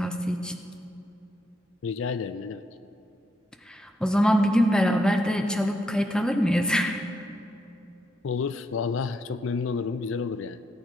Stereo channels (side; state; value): both; normal; correlation 0.79